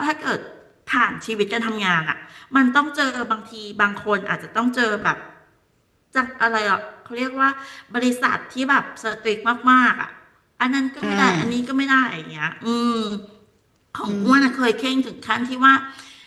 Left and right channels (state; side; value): identical; both; correlation 1.00